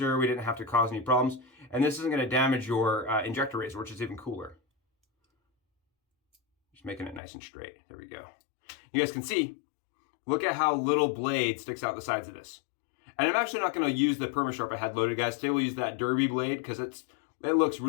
We didn't have to cause any problems. And this isn't going to damage your injector razor, which is even cooler. Just making it nice and straight. There we go. You guys can see, look at how little blade sticks out the sides of this. And I'm actually not going to use the PermaSharp I had loaded, guys. Today we'll use that Derby blade because it looks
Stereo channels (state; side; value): drops out; right; at 7.2 s